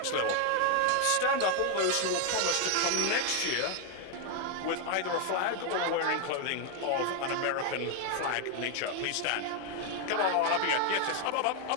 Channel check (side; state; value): both; different; correlation 0.01